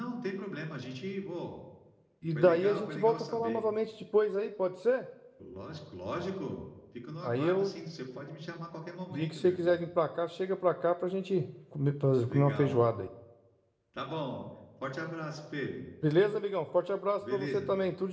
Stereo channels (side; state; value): both; identical; correlation 1.00